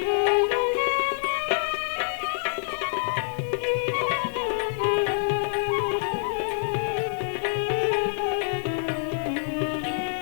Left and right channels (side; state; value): right; silent; 61 dB below the other